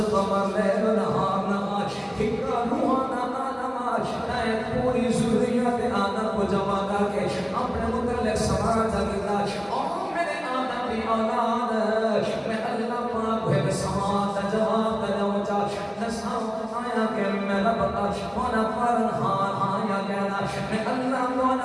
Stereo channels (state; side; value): identical; both; correlation 1.00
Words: قمر لیل نہار نہار ہکا روحانا پوری ضروریات آدم کو جمع کر کے اپنے متعلق سماج اگلا اور میرے آدم کی اولاد میں اللہ پاک ہوئے سماج جواب دلوچا نساؤ آیا کہ میں رب مولا پرنہان آیا کہنا میں اللہ